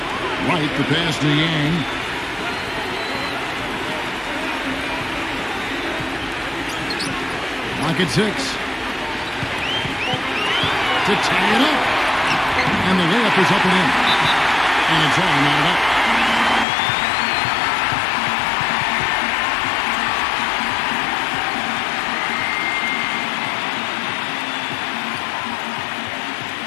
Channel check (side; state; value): right; drops out; at 16.7 s